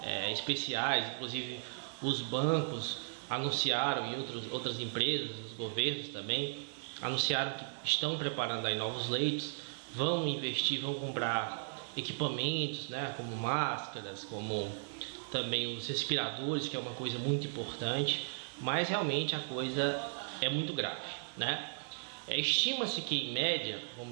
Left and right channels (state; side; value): silent; left; digital silence